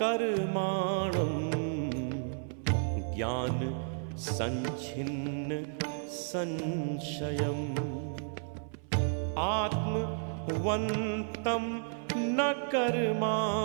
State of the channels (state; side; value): silent; left; 56 dB below the other